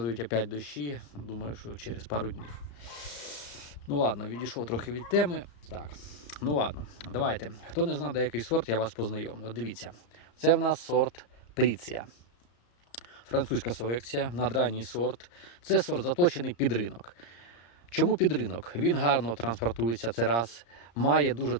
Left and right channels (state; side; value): late; right; 34 ms